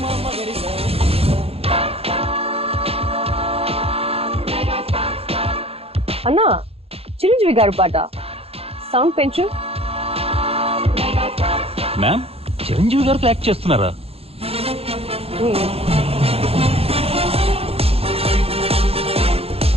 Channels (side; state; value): left; late; 0.29 ms